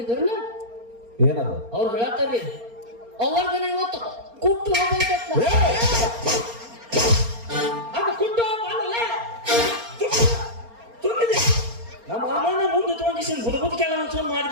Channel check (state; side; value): late; left; 4.3 ms